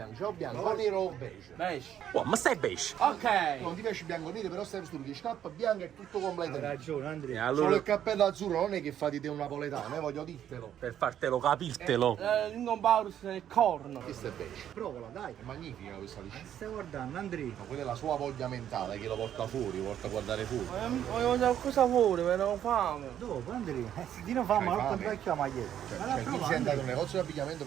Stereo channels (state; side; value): quieter; left; 10.3 dB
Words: C'è o bianco, o nero o beige? Beige. Oh, ma stai beige? Ok. Non ti piace il bianco nero, però stai vestito di scarpa bianca e tutto Hai completo. ragione, E Andrea. Solo allora, il cappello azzurro non è che fa di te un napoletano, voglio dirtelo. per fartelo capirtelo. L'ingompaurus nel corno. Questo è beige. Provala, dai. È magnifica questa liscina. Stai guardando, Andrea. Ma quella è la sua voglia mentale che lo porta fuori, lo porta a guardare fuori. Voglio mangiare qualcosa fuori, però ho fame. Dopo, Andrea. Dino fa, ma non vecchio la maglietta. Cioè, tu sei andato in un negozio di abbigliamento